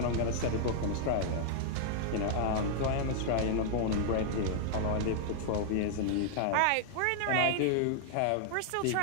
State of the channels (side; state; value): both; different; correlation -0.01